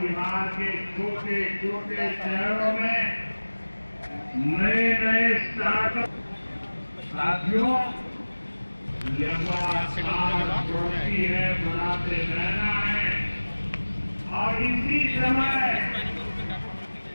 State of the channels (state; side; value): inverted; both; correlation -1.00